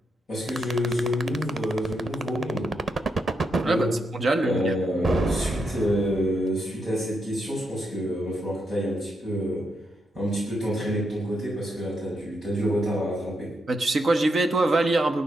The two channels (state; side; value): normal; both; correlation 0.82